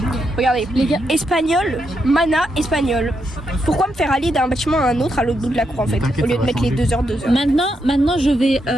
Regardez, les gars, espagnol, mana, espagnol. Pourquoi me faire aller d'un bâtiment à un autre à l'autre bout de la cour en fait, au lieu de mettre les 2 heures, 2 heures. Maintenant je vais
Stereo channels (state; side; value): normal; both; correlation 0.81